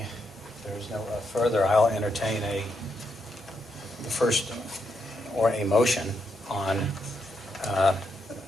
there's no further, I'll entertain the first, or a motion on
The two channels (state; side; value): normal; both; correlation 0.80